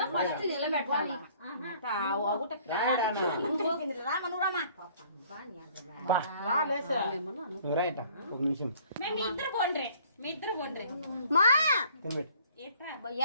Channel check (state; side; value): inverted; both; correlation -0.57